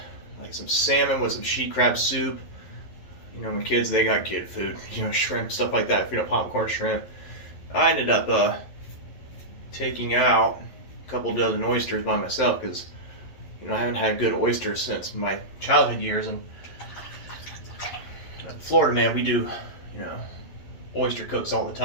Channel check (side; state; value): right; late; 11 ms